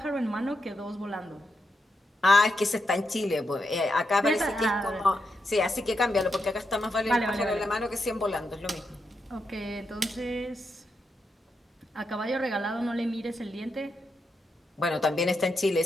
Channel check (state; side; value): normal; both; correlation 0.84